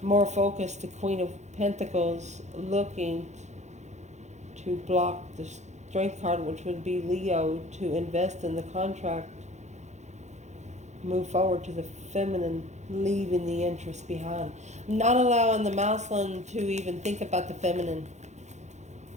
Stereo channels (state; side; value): late; left; 0.33 ms